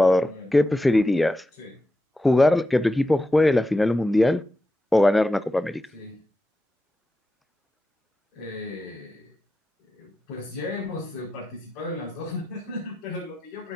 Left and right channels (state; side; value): normal; both; correlation 0.91